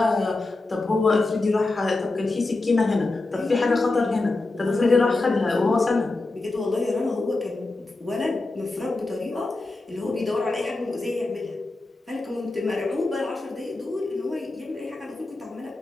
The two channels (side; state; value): right; quieter; 3.2 dB